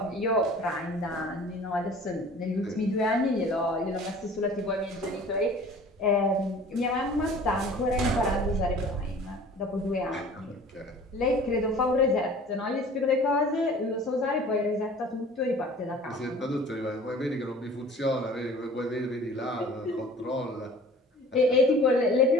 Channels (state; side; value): normal; both; correlation 0.46